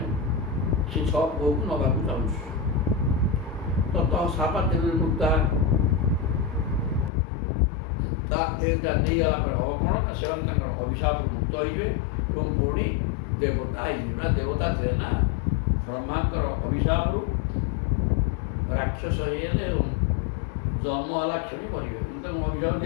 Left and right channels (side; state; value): right; drops out; at 7.1 s